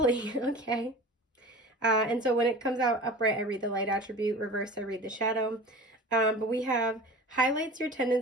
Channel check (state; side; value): normal; both; correlation 0.38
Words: Okay. And so when it comes out upright, I read the light attribute. Reverse, I read the shadow. But we have highlights your